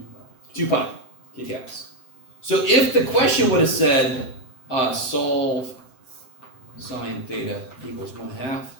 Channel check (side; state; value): right; late; 7.8 ms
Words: 2 pi, kcaps. So if the question would have said, solve sine theta equals 1/2,